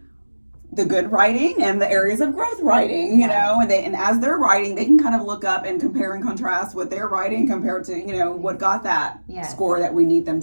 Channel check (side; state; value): both; inverted; correlation -1.00